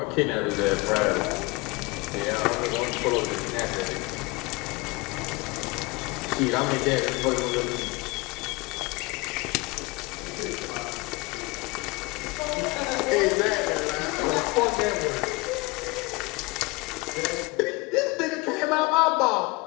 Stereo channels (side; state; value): right; quieter; 24.6 dB